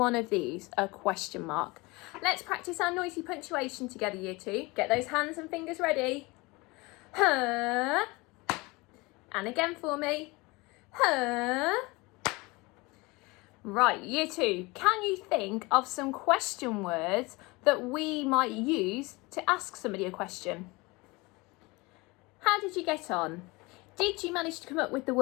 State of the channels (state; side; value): quieter; right; 24.3 dB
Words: of these, a question mark. Let's practice our noisy punctuation together, Year 2. Get those hands and fingers ready. Huh. And again for me. Huh. Right, Year 2, can you think of some question words that we might use to ask somebody a question? How did you get on? Did you manage to come up with the